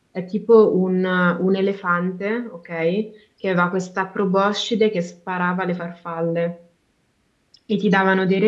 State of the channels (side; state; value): both; identical; correlation 1.00